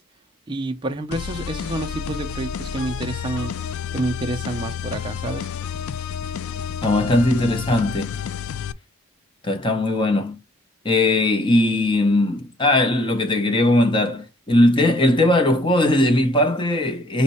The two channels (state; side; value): normal; both; correlation 0.62